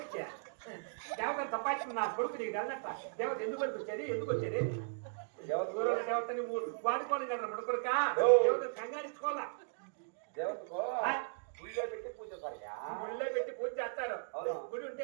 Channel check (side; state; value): left; silent; digital silence